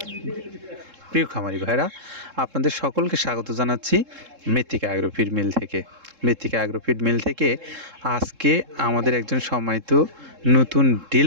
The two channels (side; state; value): left; late; 3.7 ms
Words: প্রিয় খামারি ভাইরা, আপনাদের সকলকে স্বাগত জানাচ্ছি মৃত্তিকা অ্যাগ্রোফিড মিল থেকে। মৃত্তিকা অ্যাগ্রোফিড মিল থেকে আজকে আমাদের একজন সম্মানিত নতুন